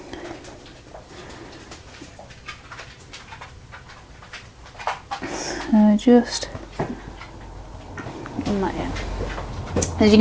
So just in that in. As you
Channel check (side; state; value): both; identical; correlation 1.00